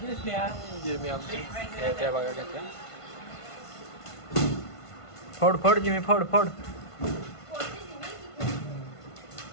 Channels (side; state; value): right; late; 1.5 ms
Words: स्नेहा. जिमी आमची येते बघा कसं. फोड जिमी फोड.